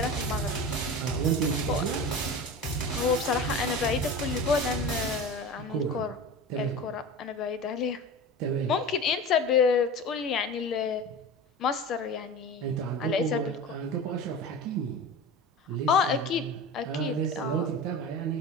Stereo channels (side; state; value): both; normal; correlation 0.31